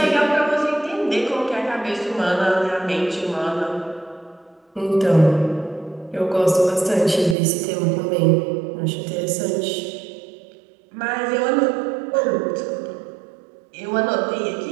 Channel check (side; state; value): left; drops out; at 7.4 s